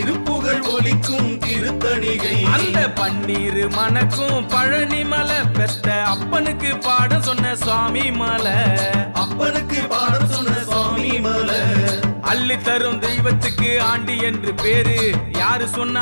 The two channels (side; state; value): both; inverted; correlation -1.00